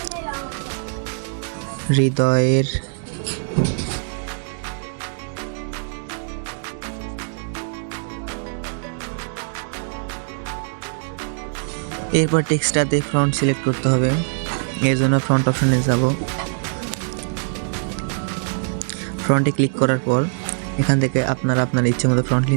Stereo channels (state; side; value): silent; left; digital silence